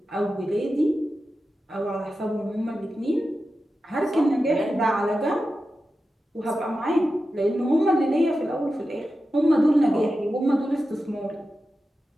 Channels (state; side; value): normal; both; correlation 0.92